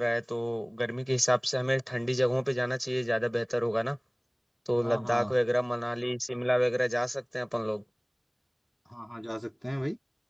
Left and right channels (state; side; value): identical; both; correlation 1.00